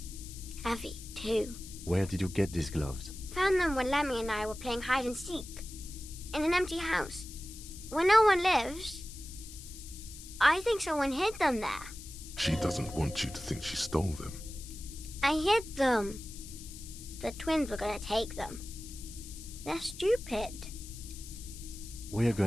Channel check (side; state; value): left; noise; hiss, 14 dB below the sound